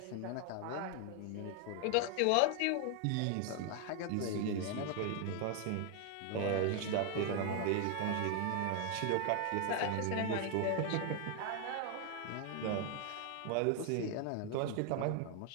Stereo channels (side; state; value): both; different; correlation 0.01